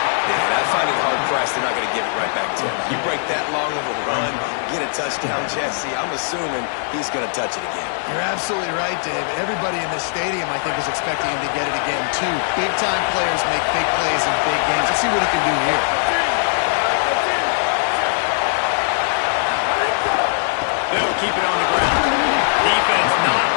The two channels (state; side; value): silent; right; digital silence